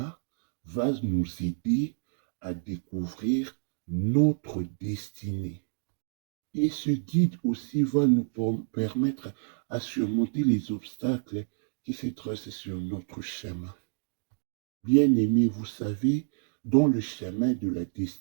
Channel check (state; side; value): silent; left; digital silence